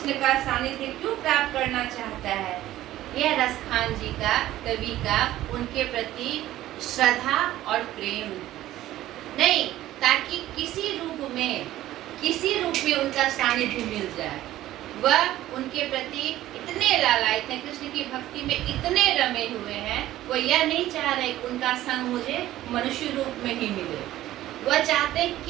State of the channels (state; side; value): quieter; left; 14.5 dB